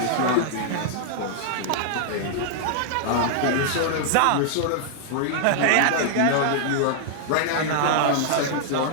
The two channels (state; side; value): different; both; correlation -0.01